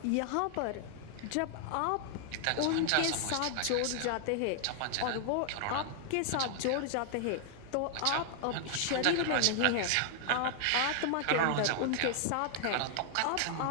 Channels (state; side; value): different; both; correlation 0.00